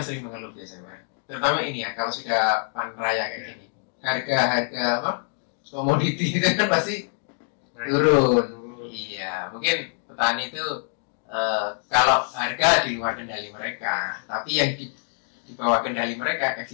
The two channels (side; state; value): right; silent; 56 dB below the other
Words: sering mengeluh biasanya, Pak. terutama ini ya, kalau sudah panen raya kayak gini, harga apa komoditi itu kan pasti turun. Iya, mungkin petani itu kalau harga di luar kendali mereka, tapi yang di bawah kendali mereka